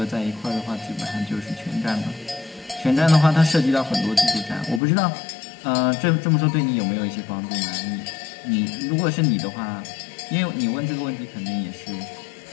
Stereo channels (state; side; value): drops out; right; at 4.8 s